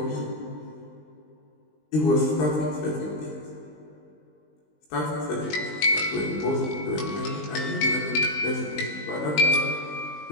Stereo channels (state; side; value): late; right; 20 ms